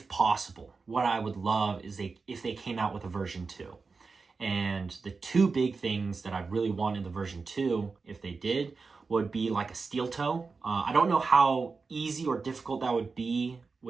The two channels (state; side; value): quieter; left; 4.5 dB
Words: possible, what I would love is if they came out with a version 2. And the two big things that I really want in the version 2, if they did, would be like a steel toe. I don't know how easy or difficult that would be